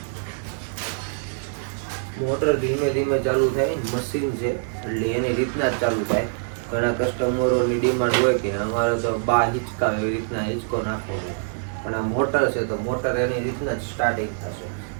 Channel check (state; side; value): silent; left; digital silence